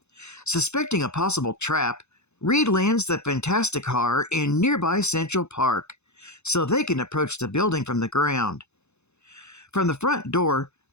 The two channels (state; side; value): late; right; 0.81 ms